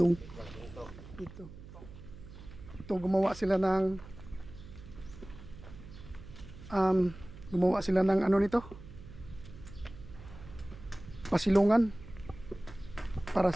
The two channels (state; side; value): noise; right; hum, 16 dB below the sound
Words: Ito gumawa sila ng ano nito? Pasilungan. Para